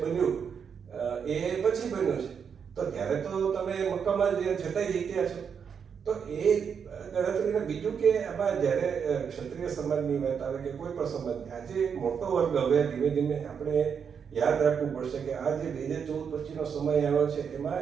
બન્યું એ પછી બન્યું છે, તો ત્યારે તો તમે મક્કમ જ છતાંય જીત્યા છો. તો એ ગણતરીને બીજું કે આમાં જ્યારે ક્ષત્રિય સમાજની વાત આવે કે કોઈ પણ સમાજની, આજે મોટો વર્ગ હવે ધીમે ધીમે આપણે યાદ રાખવું પડશે કે આ જે 2014 પછીનો સમય આવ્યો છે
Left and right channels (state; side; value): quieter; left; 6.9 dB